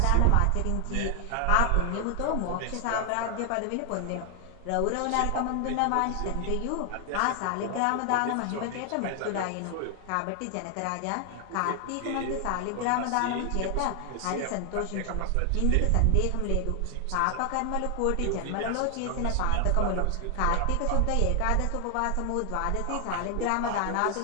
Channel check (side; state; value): both; different; correlation 0.00